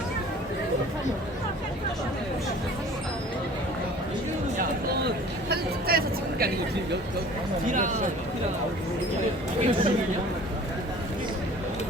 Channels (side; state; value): both; normal; correlation 0.47